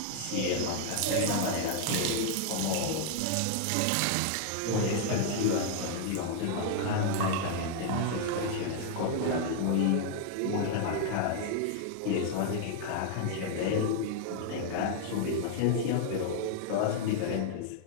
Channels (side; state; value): both; different; correlation 0.00